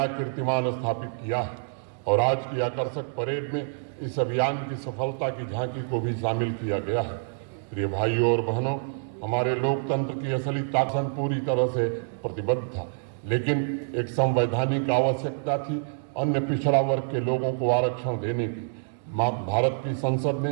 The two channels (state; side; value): silent; left; digital silence